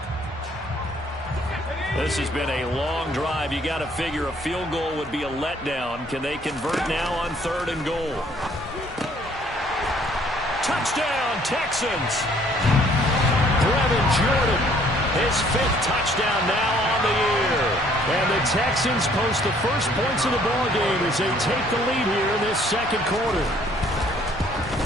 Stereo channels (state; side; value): normal; both; correlation 0.61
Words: This has been a long drive. You got to figure a field goal would be a letdown. Can they convert now on 3rd and goal? Touchdown, Texans. Brevin Jordan, his 5th touchdown now on the year. And the Texans post the first points of the ball game as they take the lead here in this 2nd quarter.